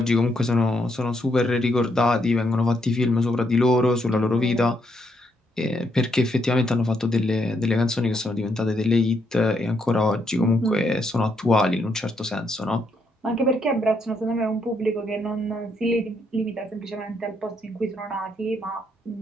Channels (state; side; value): normal; both; correlation 0.76